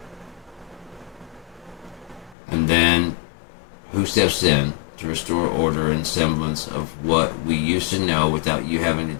And then, who steps in to restore order and semblance of what we used to know without you having to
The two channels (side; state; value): right; drops out; at 2.4 s